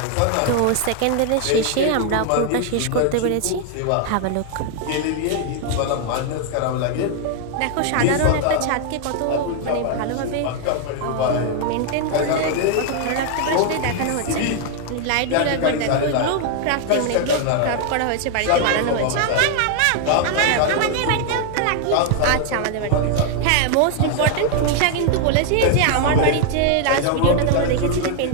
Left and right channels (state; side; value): different; both; correlation 0.00